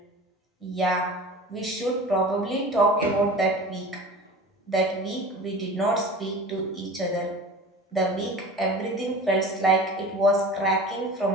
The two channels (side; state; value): both; normal; correlation 0.38